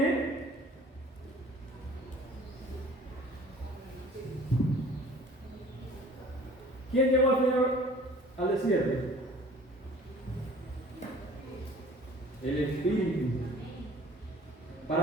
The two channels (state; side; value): normal; both; correlation 0.49